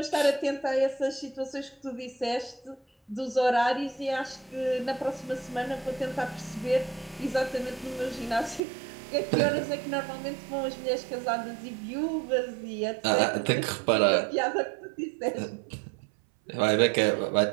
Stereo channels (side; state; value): left; drops out; at 8.6 s